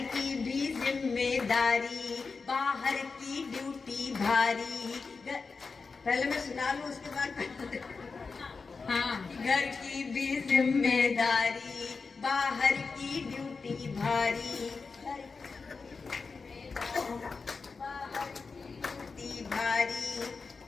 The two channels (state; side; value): quieter; right; 4.6 dB